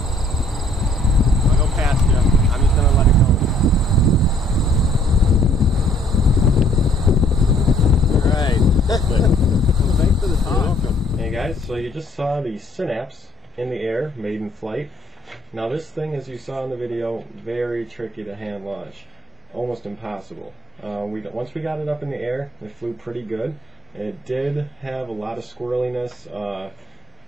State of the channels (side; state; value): both; normal; correlation 0.62